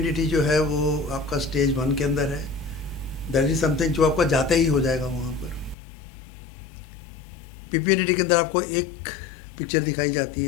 जो है वो आपका स्टेज 1 के अंदर है. दैट इज समथिंग जो आपका जाते ही हो जाएगा वहाँ पर. पीपीडीटी के अंदर आपको एक पिक्चर दिखाई जाती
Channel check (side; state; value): right; drops out; at 5.8 s